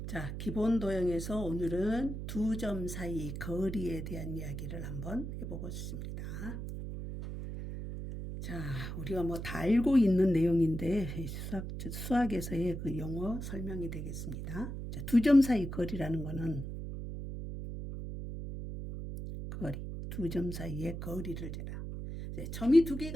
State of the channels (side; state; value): right; noise; hum, 6 dB below the sound